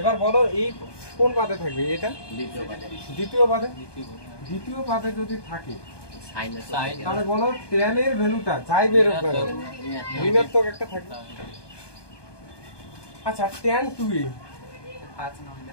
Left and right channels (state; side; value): late; right; 1.2 ms